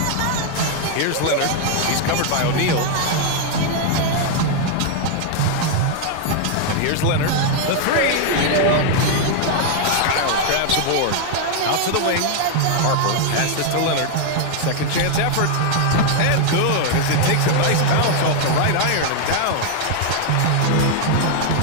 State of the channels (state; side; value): different; both; correlation 0.00